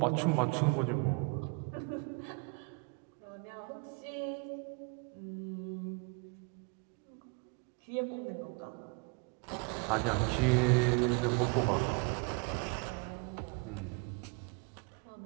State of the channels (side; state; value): left; quieter; 30.9 dB